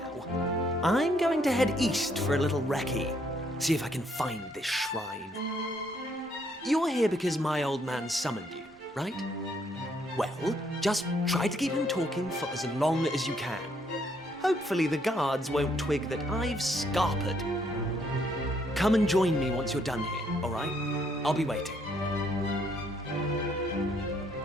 I'm going to head east for a little recce, see if I can find this shrine. You're here because my old man summoned you, right? Well, just try to keep him talking for as long as you can. Hopefully the guards won't twig that I've scarpered. Come and join me once you're done here, all right? I'll be waiting.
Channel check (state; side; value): normal; both; correlation 0.70